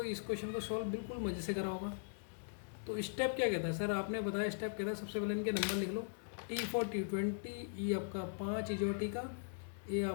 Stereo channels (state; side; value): silent; right; digital silence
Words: इस क्वेश्चन को सॉल्व बिल्कुल मज़े से करा होगा। तो स्टेप क्या कहता है सर? आपने बताया स्टेप कहता है सबसे पहले इनके नंबर लिख लो। T for T20, E आपका 5 इजोटी का, A